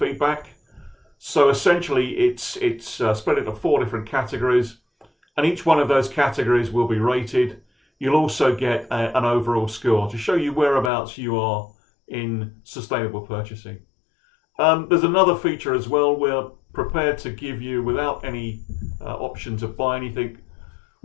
So essentially, it's spread into 4 different categories, and each one of those categories will be rated. You'll also get an overall score to show you whereabouts you are in sustainable purchasing. There's another feature as well. We're prepared to give you, without any option to buy anything,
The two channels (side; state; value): right; drops out; at 10.9 s